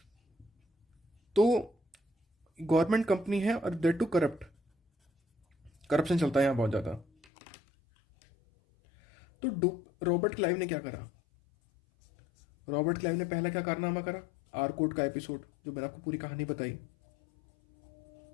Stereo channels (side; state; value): right; drops out; at 7.2 s